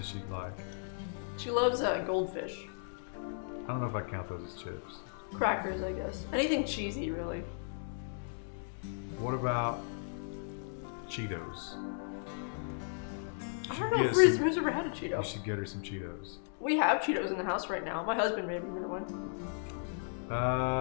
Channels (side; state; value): right; silent; digital silence